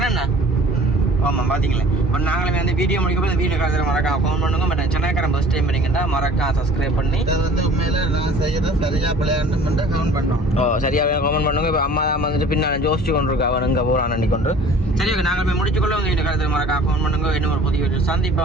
என்ன ஆமாம் பார்த்தீங்களா இப்போ நாங்களுமே வந்து வீடியோ முடிக்கப்போ இந்த வீடியோ கருத்து மறக்காம கமெண்ட் பண்ணுங்க பட் சென்னைக்காரன் ஃபஸ்ட் டைம் பண்ணிங்கன்னா மறக்காம சப்ஸ்கிரைப் பண்ணி இதை வந்து உண்மையில நான் செய்யறத சரியா பிள்ளையாண்டு மட்டும் கமெண்ட் பண்ணோம் சரியாக கமெண்ட் பண்ணுங்க இப்போ அம்மா தான் வந்துட்டு பின்னால் ஜோசிச்சு கொண்டு இருக்கா அவன் இங்கே போகிறான் அண்டி கொண்டு சரி ஓகே நாங்கள் போய் முடிச்சுக்கொள்ள உங்கள் வீடியோ கருத்து மறக்காம கமெண்ட் பண்ணுங்க இன்னும் ஒரு புதிய வீடியோ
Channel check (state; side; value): normal; both; correlation 0.48